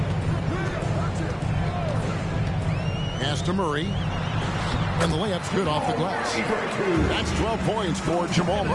Pass to Murray. And the layup's good off the glass. That's 12 points for Jamal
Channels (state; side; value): identical; both; correlation 1.00